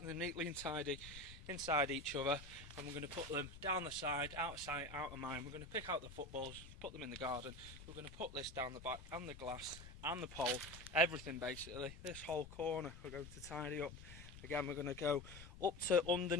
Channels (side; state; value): left; noise; rumble, 14 dB below the sound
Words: neatly and tidy inside each other, and we're going to put them down the side, out of sight, out of mind. We're going to pick out the footballs, put them in the garden. We're going to put this down the back and the glass and the pole, everything basically. This whole corner we're going to tidy up. Again, we're going to go up to